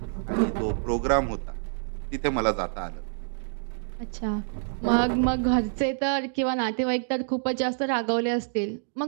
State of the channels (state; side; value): silent; left; digital silence